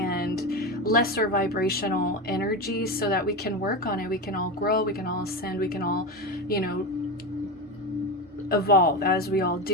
lesser vibrational energies so that we can work on it. We can all grow, we can all ascend, we can all, evolve as we all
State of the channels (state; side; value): normal; both; correlation 0.19